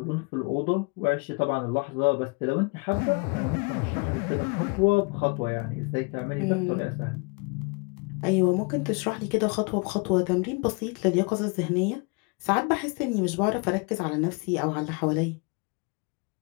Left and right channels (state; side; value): quieter; right; 31.5 dB